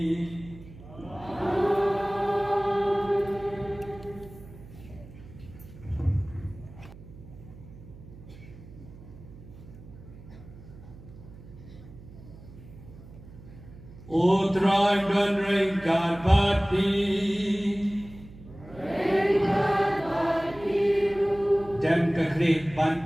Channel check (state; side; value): noise; right; hum, 18 dB below the sound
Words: Utrai dan ringkat pati Dan kekrik